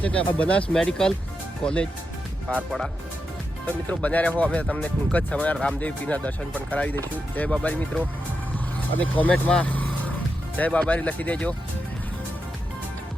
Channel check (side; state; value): both; normal; correlation 0.87